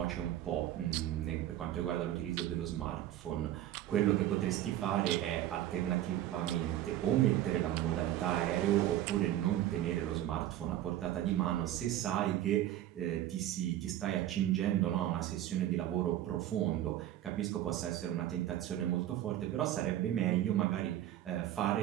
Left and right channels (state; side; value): quieter; left; 12.9 dB